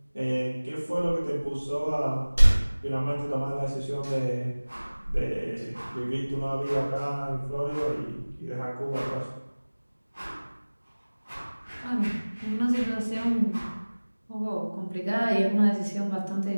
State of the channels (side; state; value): both; inverted; correlation -1.00